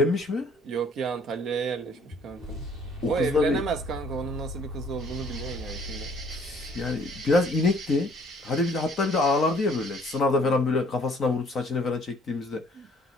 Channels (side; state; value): both; normal; correlation 0.59